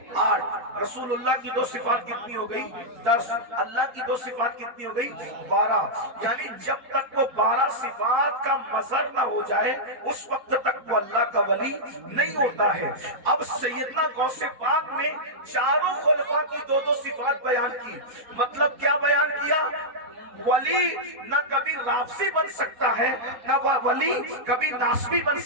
8। रसूलुल्लाह की 2 सिफात कितनी हो गई, 10। अल्लाह की 2 सिफात कितनी हो गई, 12। यानी जब तक वो 12 सिफात का मजहर ना हो जाए उस वक्त तक वो अल्लाह का वली नहीं होता है। अब सैयदना गौसे पाक ने चारों खुलफा की 2-2 सिफात बयान की, मतलब क्या बयान किया, वली न कभी राफसी बन सकता है, न वली कभी नासबी बन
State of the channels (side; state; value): left; late; 4.1 ms